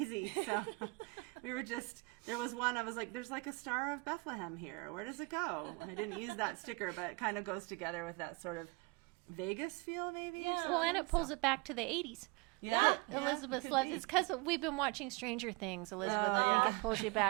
So we were just, there was one, I was like, there's like a Star of Bethlehem here. Where does it go? I didn't use that sticker, but it kind of goes together with that sort of Vegas feel, maybe. Yeah. Well, and it pulls it back to the 80s. Yeah. Elizabeth loves it's because we've been watching Stranger Things, Elizabeth. Oh, I think yeah. it pulls you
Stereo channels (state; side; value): quieter; left; 27.4 dB